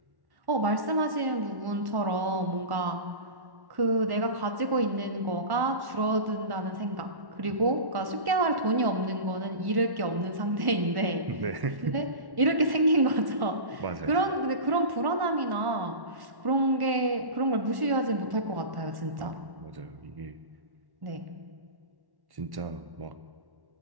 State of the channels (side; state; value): left; late; 1.1 ms